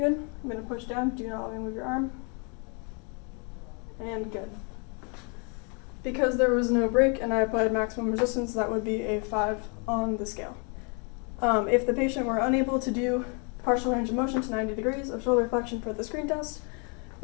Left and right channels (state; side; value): quieter; right; 36.0 dB